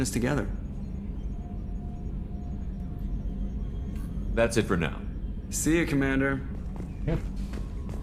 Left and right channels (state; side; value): identical; both; correlation 1.00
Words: us together. That's it for now. See you, Commander.